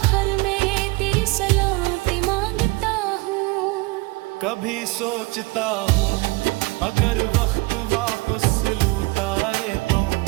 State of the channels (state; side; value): quieter; left; 23.3 dB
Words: में तेरी सलामती मांगता हूँ। कभी सोचता हूँ अगर वक्त वापस लौटाए तो